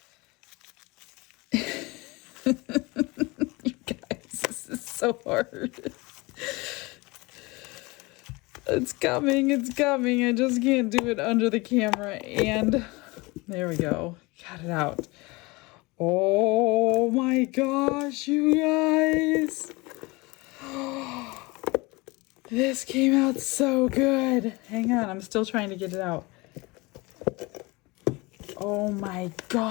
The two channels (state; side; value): quieter; right; 24.4 dB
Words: You guys, this is so hard. It's coming, it's coming. I just can't do it under the camera. And there we go. Got it out. Oh my gosh, you guys. This came out so good. Hang on, I'm still trying to get it out. Oh my